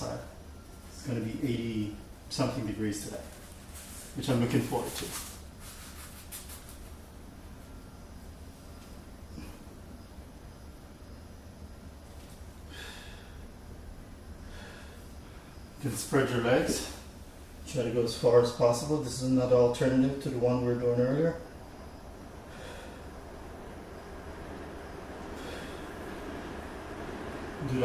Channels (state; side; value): identical; both; correlation 1.00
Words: It's going to be 80 something degrees today, which I'm looking forward to. You can spread your legs. Try to go as far as possible. This is another alternative to the one we were doing earlier. Do